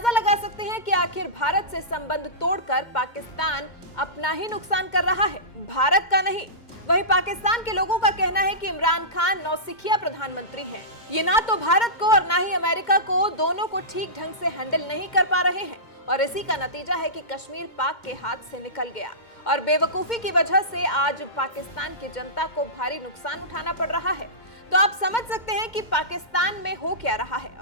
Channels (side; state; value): right; late; 2.1 ms